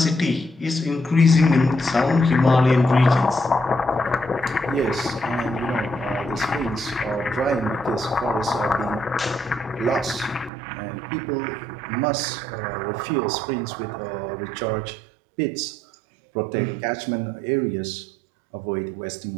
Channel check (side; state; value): left; drops out; at 10.5 s